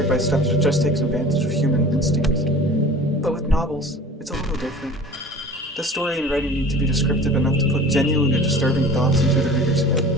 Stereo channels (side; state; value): both; normal; correlation 0.42